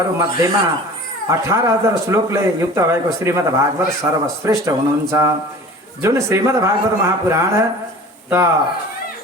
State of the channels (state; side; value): normal; both; correlation 0.41